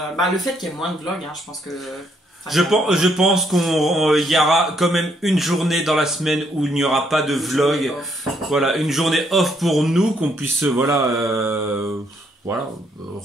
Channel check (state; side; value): normal; both; correlation 0.72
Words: Le fait qu'il y ait moins de vlogs, je pense que. Je pense qu'il y aura quand même une journée dans la semaine où il n'y aura pas de vlog. Voilà, une journée off pour nous, qu'on puisse se